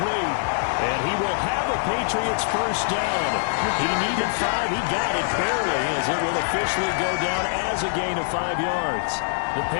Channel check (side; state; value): right; silent; digital silence